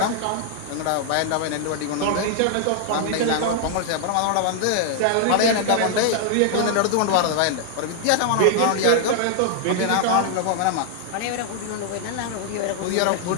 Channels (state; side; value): different; both; correlation 0.00